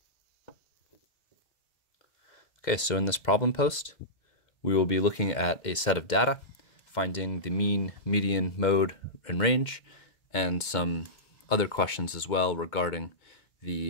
Okay, so in this problem post, we will be looking at a set of data, finding the mean, median, mode, and range, and some other questions as well regarding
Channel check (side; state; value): right; late; 2.1 ms